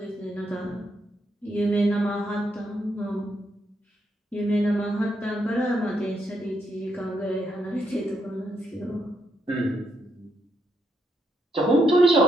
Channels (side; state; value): both; normal; correlation 0.78